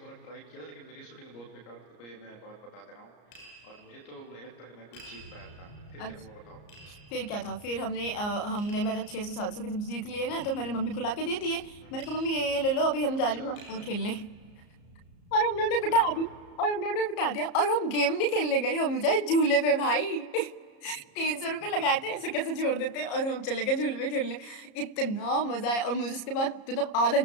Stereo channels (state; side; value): late; right; 34 ms